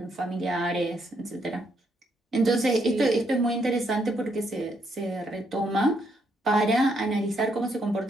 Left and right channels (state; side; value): normal; both; correlation 0.74